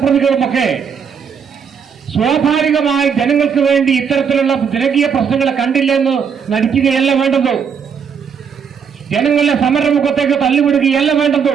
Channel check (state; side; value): quieter; left; 6.8 dB